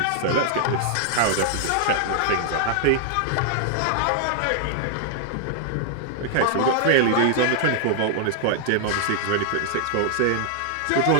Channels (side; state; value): both; different; correlation 0.00